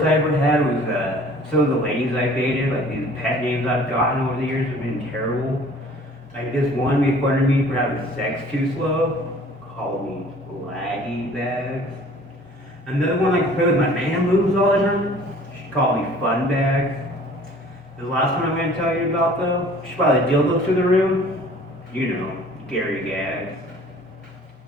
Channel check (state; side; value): normal; both; correlation 0.51